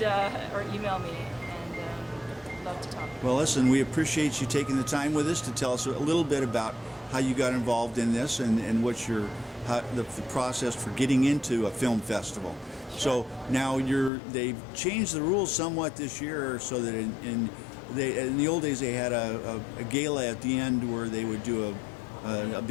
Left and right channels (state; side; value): drops out; right; at 14.1 s